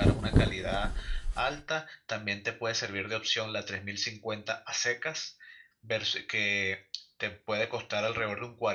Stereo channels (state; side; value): identical; both; correlation 1.00